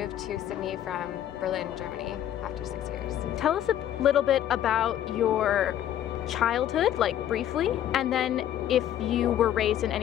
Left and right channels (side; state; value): right; quieter; 11.3 dB